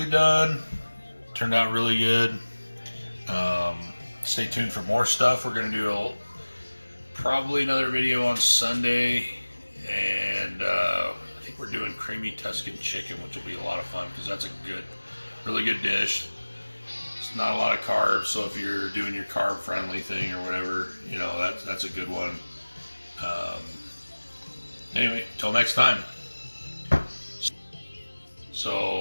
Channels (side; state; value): both; inverted; correlation -1.00